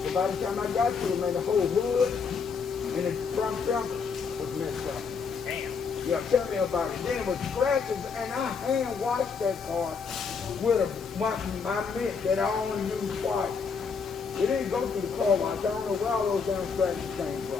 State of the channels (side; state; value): right; quieter; 5.6 dB